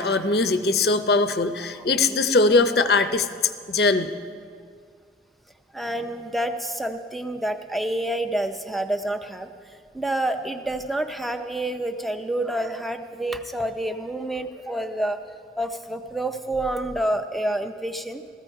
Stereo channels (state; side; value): normal; both; correlation 0.47